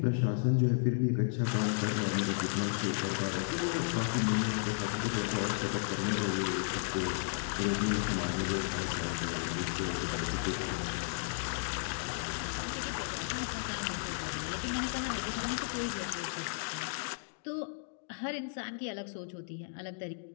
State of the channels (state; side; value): silent; right; digital silence